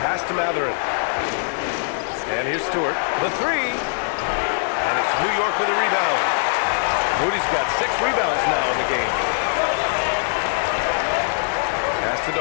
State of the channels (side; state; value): right; silent; 56 dB below the other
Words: pass to Mathurin. And here's Stewart, the 3. And it's New York with a rebound. Moody's got 6 rebounds now in the game. Pass to